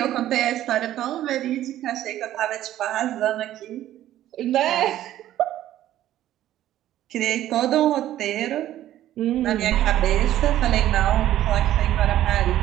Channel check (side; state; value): left; quieter; 13.0 dB